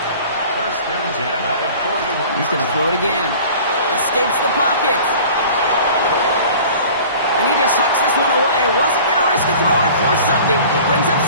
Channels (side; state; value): both; inverted; correlation -0.44